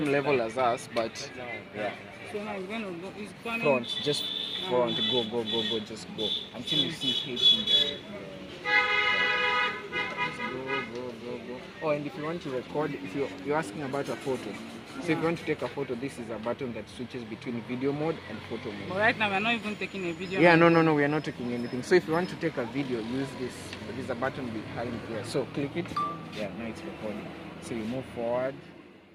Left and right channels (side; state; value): both; identical; correlation 1.00